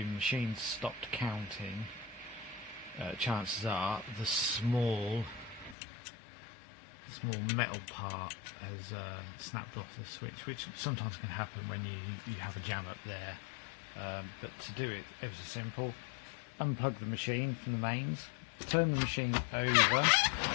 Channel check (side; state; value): right; drops out; at 5.8 s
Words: machine's stopped counting, chances are the small metal part has snapped off the switch, which sometimes can happen when you have a jam up there. But to do it, ever so simple. Unplug the machine from the mains, turn the machine over